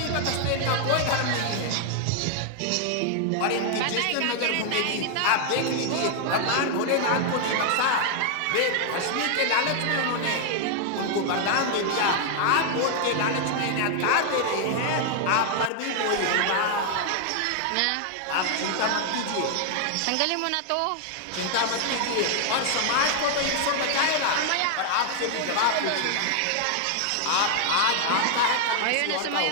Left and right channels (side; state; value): both; different; correlation 0.00